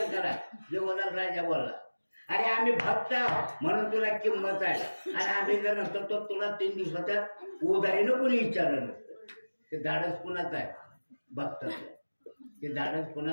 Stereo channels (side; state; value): both; inverted; correlation -1.00